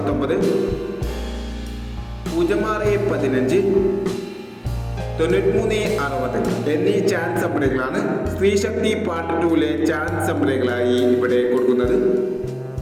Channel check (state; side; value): identical; both; correlation 1.00